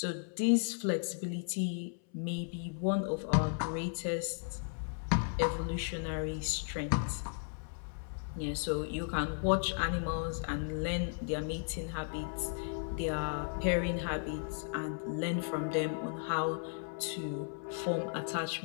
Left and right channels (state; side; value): silent; right; 54 dB below the other